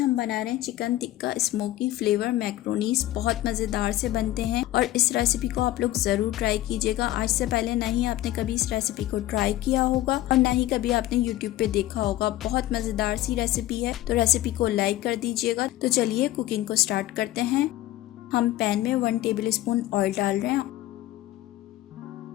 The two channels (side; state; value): right; quieter; 15.2 dB